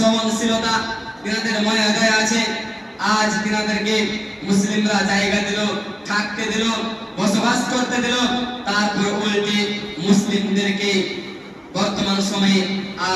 তেনাদের মায়া দয়া আছে। আজ তেনাদেরকে মুসলিমরা জায়গা দিল, থাকতে দিল, বসবাস করতে দিল, তারপর উল্টে মুসলিমদেরকে বর্তমান সময়ে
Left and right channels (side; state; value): both; identical; correlation 1.00